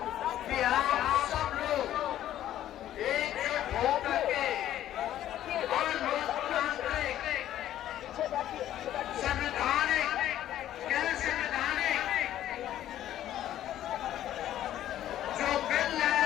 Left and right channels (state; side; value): quieter; right; 12.3 dB